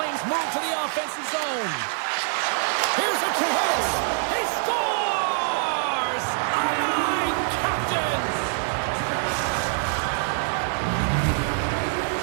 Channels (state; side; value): silent; left; 62 dB below the other